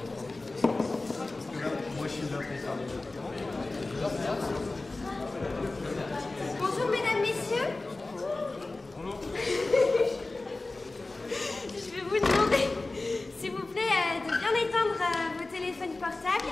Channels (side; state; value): right; quieter; 3.2 dB